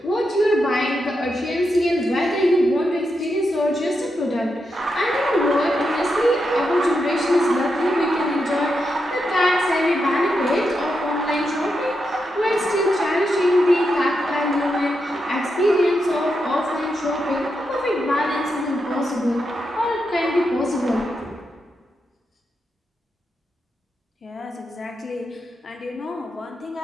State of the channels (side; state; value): both; normal; correlation 0.85